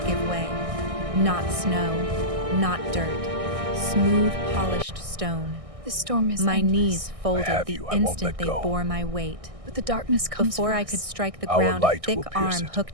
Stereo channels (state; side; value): late; left; 1.6 ms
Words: give way. Not snow, not dirt. Smooth, polished stone. The storm is My endless, knees I folded have the you. I won't instant let they go. bore my weight. but the darkness comes Before for I us. could strike the Our ground, a light thick will pierce arm it,